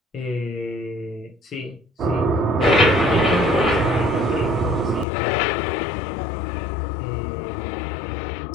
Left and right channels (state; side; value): drops out; right; at 5.1 s